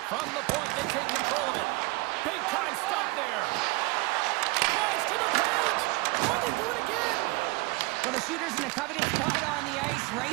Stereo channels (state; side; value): quieter; left; 24.6 dB